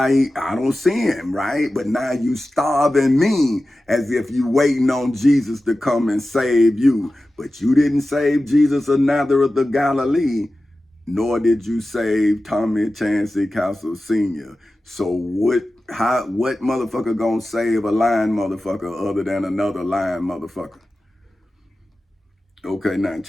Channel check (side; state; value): both; normal; correlation 0.94